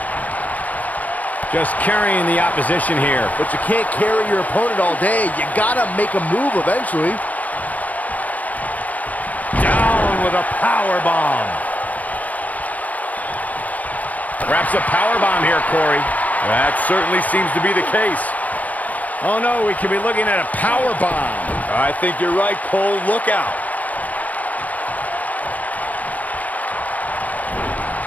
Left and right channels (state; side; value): late; right; 0.074 ms